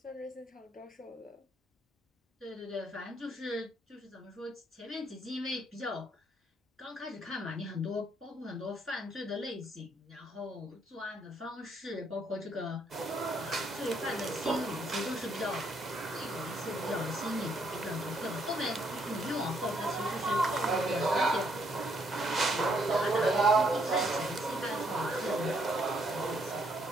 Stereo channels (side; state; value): both; normal; correlation 0.71